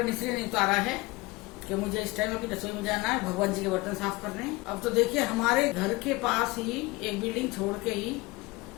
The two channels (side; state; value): right; quieter; 22.5 dB